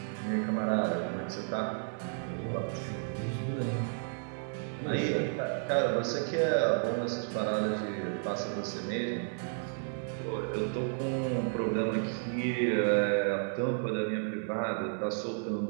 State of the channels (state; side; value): silent; left; 55 dB below the other